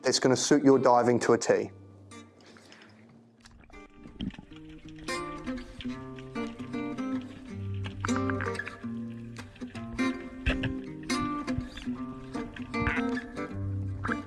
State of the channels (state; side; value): identical; both; correlation 1.00